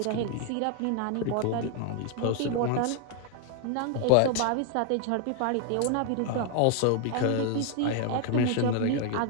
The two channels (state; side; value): different; both; correlation 0.00